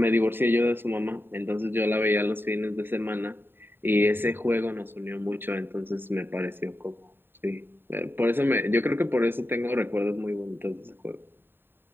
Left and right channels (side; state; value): left; late; 0.10 ms